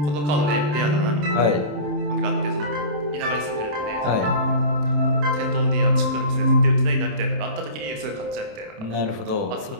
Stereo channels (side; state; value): left; late; 27 ms